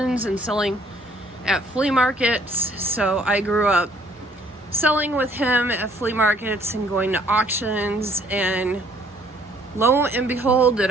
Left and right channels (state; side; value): normal; both; correlation 0.61